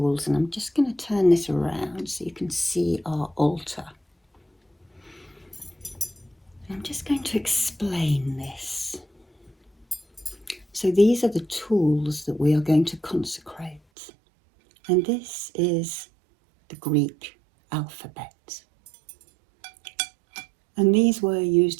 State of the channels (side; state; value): left; drops out; at 13.8 s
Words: And I'm just going to turn this around so you can see our altar. And I'm just going to explain this. So these are the tools that we are going to consecrate. And this is the Greek alphabet. And these were